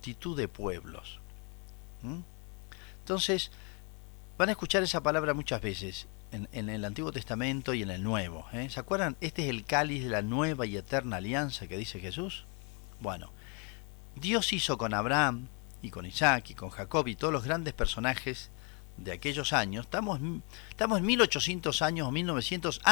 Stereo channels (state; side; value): quieter; right; 35.0 dB